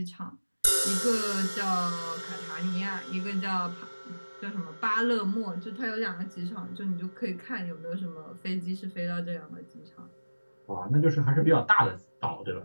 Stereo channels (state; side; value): inverted; both; correlation -1.00